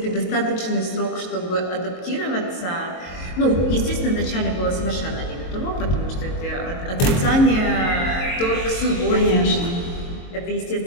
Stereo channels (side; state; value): right; late; 23 ms